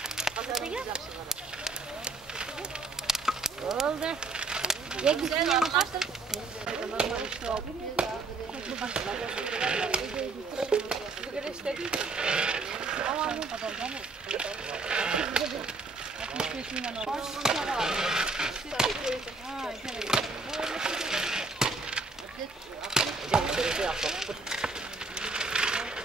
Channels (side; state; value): left; quieter; 3.8 dB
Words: Oldu. Ye güzel yapmışsın.